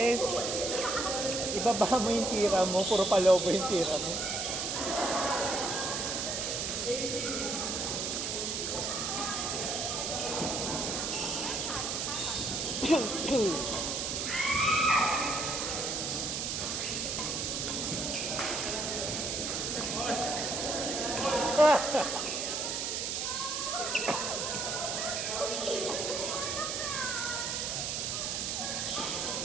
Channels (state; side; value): noise; right; hiss, 1 dB below the sound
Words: ibaba mo yung tira mo, puro palobo yung tira mo.